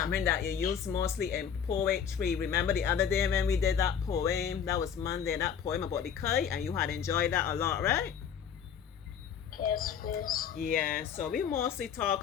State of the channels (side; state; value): right; quieter; 7.9 dB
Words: that you use mostly in poetry. Remember the other day when we did that poem? That was Monday, that poem about the kite, and you had enjoyed that a lot, right? Yes, please. Yeah, so we mostly